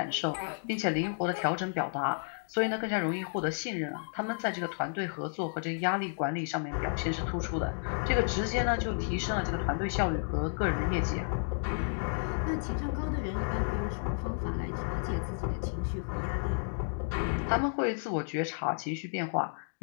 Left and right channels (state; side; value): silent; right; digital silence